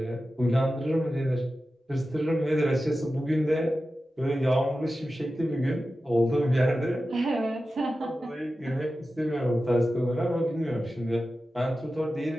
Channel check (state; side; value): normal; both; correlation 0.93